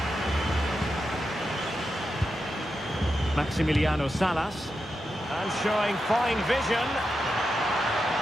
Maximiliano Salas. And showing fine vision.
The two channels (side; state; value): both; normal; correlation 0.88